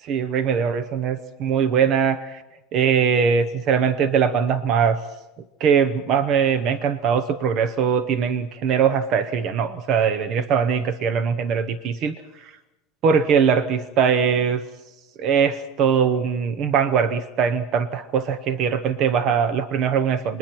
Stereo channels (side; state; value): left; quieter; 6.6 dB